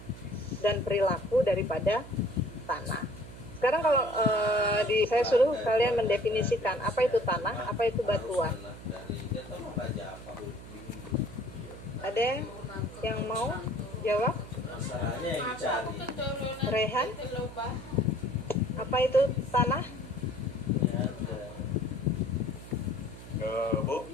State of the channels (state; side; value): noise; right; hum, 14 dB below the sound